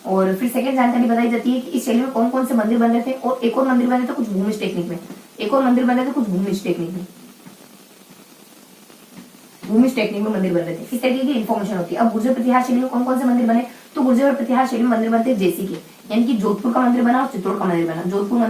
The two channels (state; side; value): identical; both; correlation 1.00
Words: और फिर सेकंड जानकारी बताई जाती है कि इस शैली में कौन कौन से मंदिर बन रहे थे, और एक और मंदिर बन रहे थे कुछ भूमिज टेक्निक में, एक और मंदिर बन रहे थे कुछ भूमिज टेक्निक में, भूमिज टेक्निक में मंदिर बन रहे थे। इस तरीके की इन्फॉर्मेशन होती है। अब गुर्जर प्रतिहार शैली में कौन कौन से मंदिर बने, तो गुर्जर प्रतिहार शैली में मंदिर बनते हैं जैसे कि, यानी कि जोधपुर का मंदिर बना और चित्तौड़ का मंदिर बना। जोधपुर